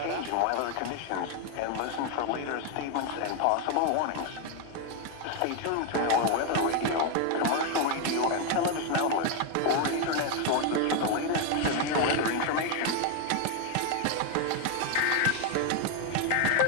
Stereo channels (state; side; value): different; both; correlation 0.01